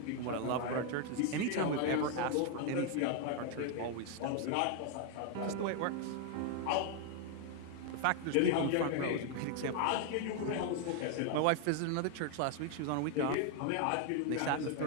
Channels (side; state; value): both; different; correlation 0.01